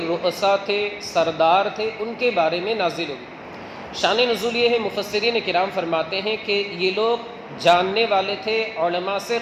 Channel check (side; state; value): both; identical; correlation 1.00